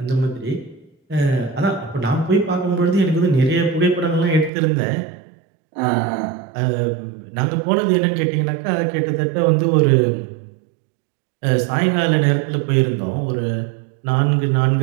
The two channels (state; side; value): drops out; left; at 4.5 s